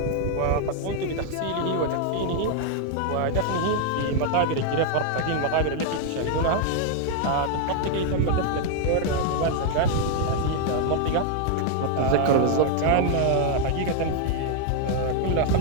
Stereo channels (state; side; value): different; both; correlation 0.00